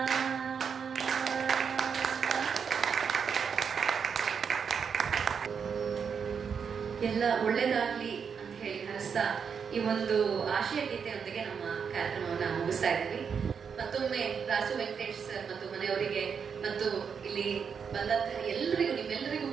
ಎಲ್ಲ ಒಳ್ಳೇದಾಗ್ಲಿ ಅಂತ ಹೇಳಿ ಹರಿಸ್ತಾ ಈ ಒಂದು ಆಶಯ ಗೀತೆಯೊಂದಿಗೆ ನಮ್ಮ ಕಾರ್ಯಕ್ರಮವನ್ನ ಮುಗಿಸ್ತಾ ಇದ್ದೀವಿ. ಮತ್ತೊಮ್ಮೆ ರಾಸು ವೆಂಕಟೇಶ್ ಸರ್ ಮತ್ತು ಮನೆಯವರಿಗೆ ಮತ್ತು ಇಲ್ಲಿ ಬಂದಂತಹ ಎಲ್ಲರಿಗೂ, ನಿಮ್ಮೆಲ್ಲರಿಗೂ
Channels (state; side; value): quieter; left; 6.6 dB